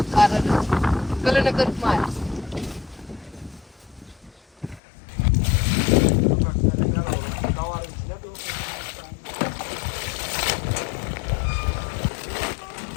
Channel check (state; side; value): drops out; right; at 4.8 s